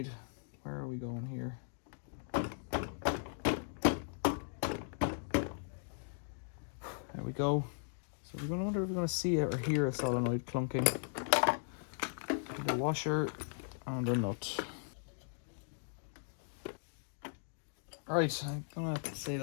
where are we going here? There we go. So we're going to wonder if we're going to see or hear a solenoid clunking. The washer and a nut. Alright, I'm going to have to say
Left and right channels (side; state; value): right; silent; digital silence